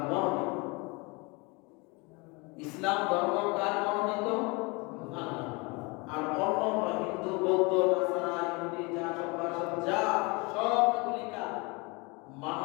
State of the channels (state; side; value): quieter; right; 27.8 dB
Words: মনোনীত। ইসলাম ধর্ম কার মনোনীত? আল্লাহ। আর অন্য হিন্দু, বৌদ্ধ, নাসারা, ইহুদি যা সব ভাষা যা সবগুলি কার?